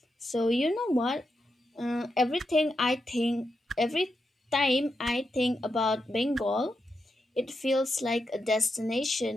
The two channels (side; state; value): both; normal; correlation 0.86